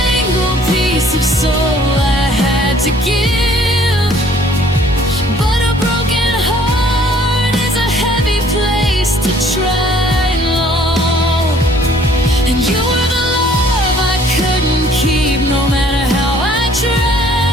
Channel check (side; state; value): both; normal; correlation 0.58